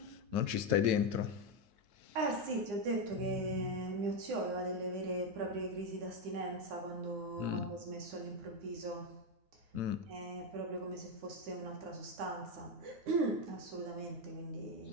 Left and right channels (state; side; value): late; left; 9.5 ms